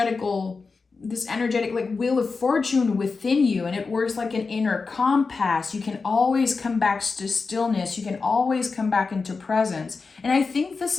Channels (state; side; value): quieter; right; 4.5 dB